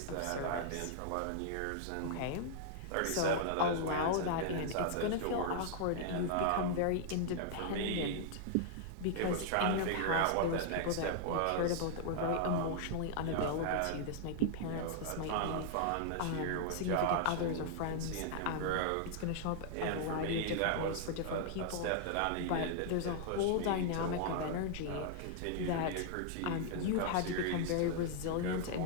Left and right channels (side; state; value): both; different; correlation -0.01